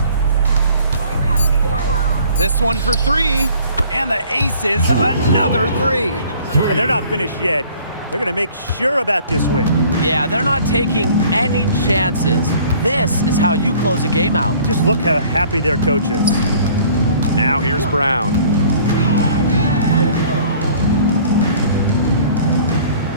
This one for three. And the Aces, another three. And they're not finished yet. They're going to make sure about this win. Yeah, they're not taking any chances. This is how you close a game out. Just look how happy their coach is. Now here's Brown.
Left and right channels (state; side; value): inverted; both; correlation -0.53